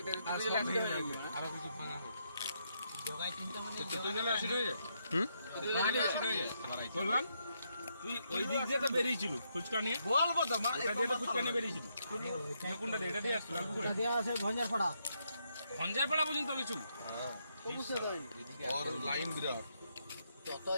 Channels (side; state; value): both; inverted; correlation -0.78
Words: আরো কিছু ভাঙা হবে। জগাই চিন্তা মানে অ্যাসিড হয়ে যায়। অ্যাসিড হয়ে যায়। বললাম তুই ওই দিক দিয়ে তো বেরিয়েছিল ফুচকা নিয়ে বলবো তো মা এটা দিয়ে তো ফুচকা নিয়ে বেরিয়েছিল কোনটা দিয়ে এটা দিয়ে আসছিল এটা দেয়া আছে ভঞ্জার পাড়া ভঞ্জারপাড়া পর্যন্ত কিছু হ্যাঁ और লাইন বিরাট। যত